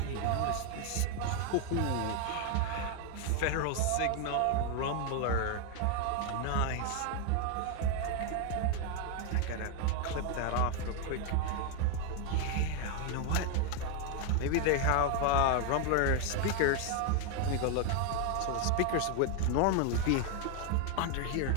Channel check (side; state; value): both; different; correlation 0.01